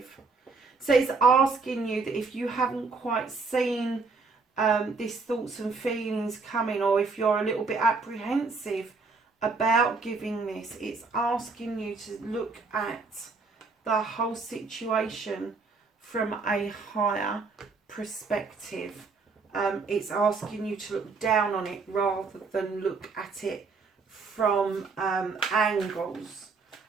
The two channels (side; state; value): left; quieter; 4.3 dB